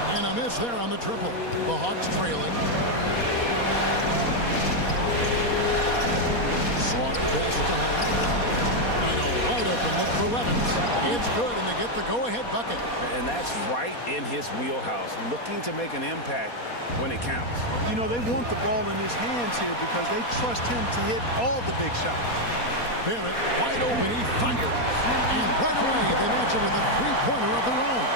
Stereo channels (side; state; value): right; late; 4.2 ms